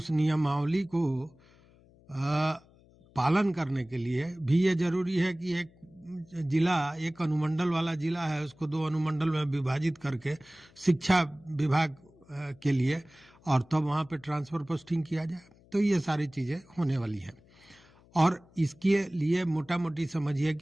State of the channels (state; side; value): noise; left; hum, 28 dB below the sound